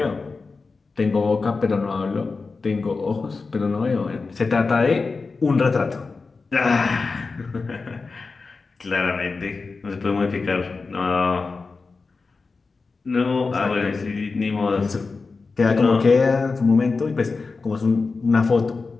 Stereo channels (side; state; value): right; quieter; 4.2 dB